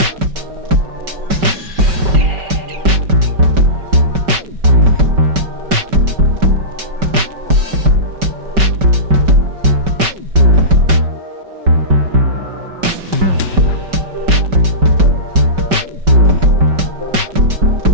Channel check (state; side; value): late; left; 5.2 ms